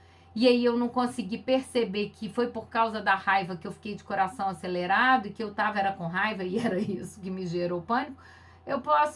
e aí eu não consegui perceber que foi por causa da raiva que eu fiquei de coração acelerado e que eu tava era com raiva e era isso que me gerou pânico, eu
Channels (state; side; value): identical; both; correlation 1.00